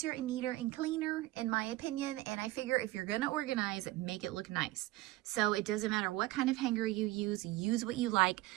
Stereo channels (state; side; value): quieter; left; 17.9 dB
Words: and neater and cleaner, in my opinion, and I figure if you're going to organize, make it look nice. So it doesn't matter what kind of hanger you use what you like.